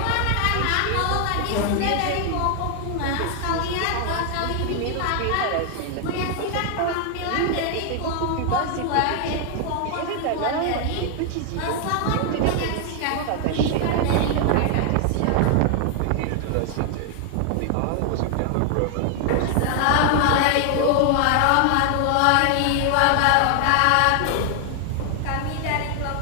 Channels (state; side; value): different; both; correlation 0.00